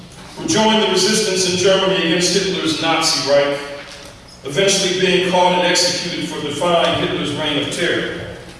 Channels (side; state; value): both; identical; correlation 1.00